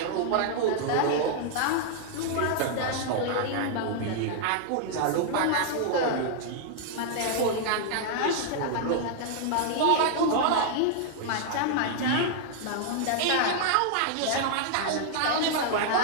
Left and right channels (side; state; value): both; different; correlation -0.01